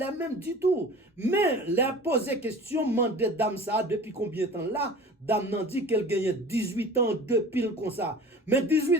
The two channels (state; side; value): normal; both; correlation 0.40